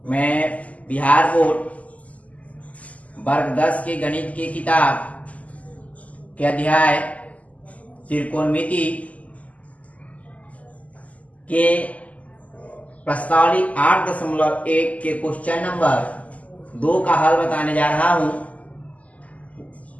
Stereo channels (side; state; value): right; late; 0.072 ms